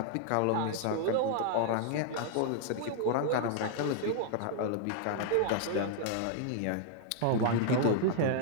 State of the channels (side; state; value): both; different; correlation -0.01